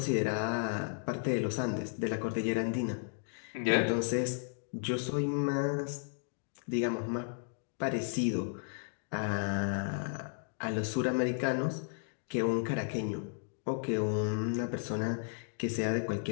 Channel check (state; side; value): silent; right; digital silence